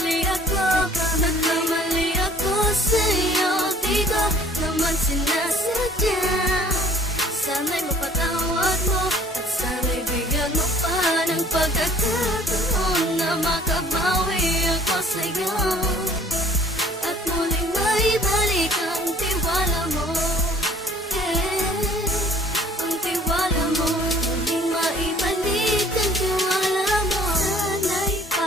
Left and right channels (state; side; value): normal; both; correlation 0.54